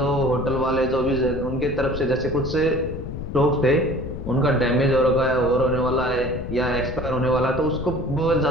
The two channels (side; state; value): left; noise; rumble, 7 dB below the sound